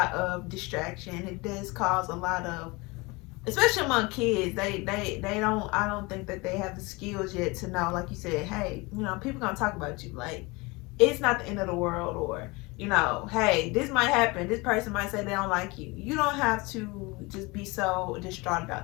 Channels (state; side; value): quieter; right; 25.1 dB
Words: of distraction. It does cause a lot of, especially among kids, they don't, I don't think that they have the skills yet to know, like you said, hey, people gonna talk about you. Like, it's not the end of the world, or, hey, this might happen. This person might say they don't like you. You don't have to just be so distraught